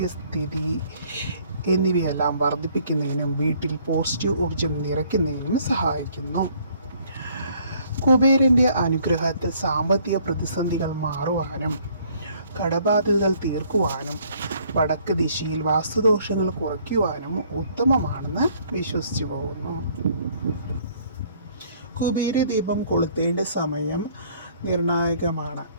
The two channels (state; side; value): inverted; both; correlation -0.61